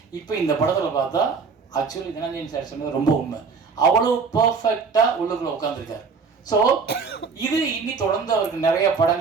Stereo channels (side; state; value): left; quieter; 5.1 dB